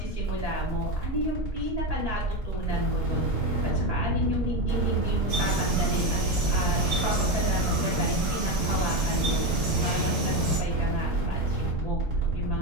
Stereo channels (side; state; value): both; normal; correlation 0.15